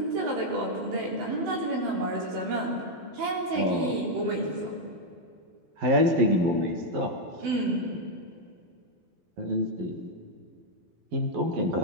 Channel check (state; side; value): late; left; 12 ms